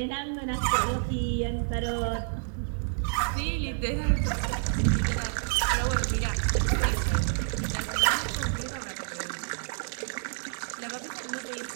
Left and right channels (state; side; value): silent; left; digital silence